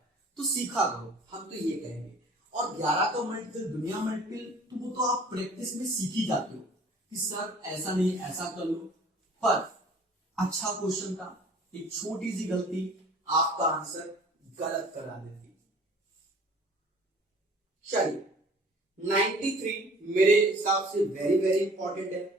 तो सीखा करो, हम तो ये कहेंगे। और 11 का मल्टीपल दुनिया मल्टीपल तो वो तो आप प्रैक्टिस में सीख ही जाते हो कि सर ऐसा नहीं ऐसा कर लो, पर अच्छा क्वेश्चन था, एक छोटी सी गलती आपका आंसर गलत करा देती। चलिए 93 मेरे हिसाब से वेरी वेरी इंपॉर्टेंट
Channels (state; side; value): normal; both; correlation 0.49